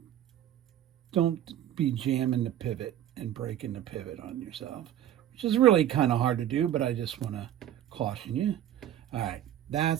be jamming the pivot and breaking the pivot on yourself, which is really kind of hard to do, but I just want to caution you. All right,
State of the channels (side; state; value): left; quieter; 11.5 dB